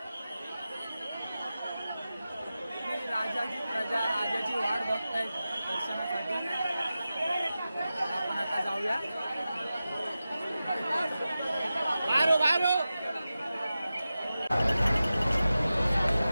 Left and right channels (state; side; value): inverted; both; correlation -0.94